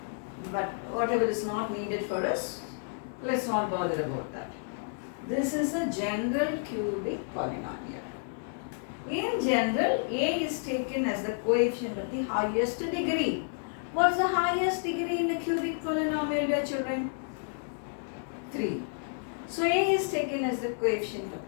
But whatever is not needed for us, let's not bother about that. This is a general cubic polynomial. In general, A is taken as the coefficient of the highest degree. What's the highest degree in the cubic polynomial, dear children? 3. So A is taken as the coefficient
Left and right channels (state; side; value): silent; right; digital silence